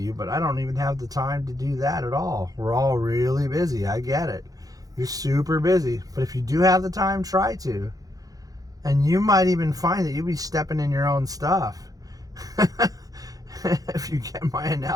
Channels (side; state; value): left; late; 0.17 ms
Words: but I don't even have the time to do that at all. We're all really busy. I get it. You're super busy. But if you do have the time, try to. And you might even find that you'll be stepping in your own stuff. If you get my